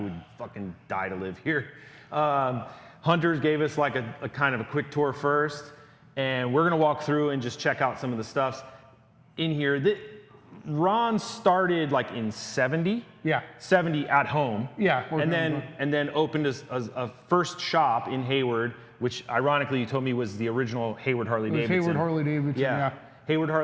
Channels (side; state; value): both; identical; correlation 1.00